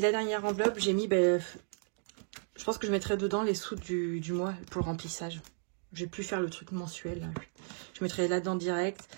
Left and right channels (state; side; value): silent; left; digital silence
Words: dernière enveloppe, j'ai mis, je pense que je mettrai dedans les sous du mois pour le remplissage. J'ai pu faire le truc mensuel. Je mettrai là-dedans direct.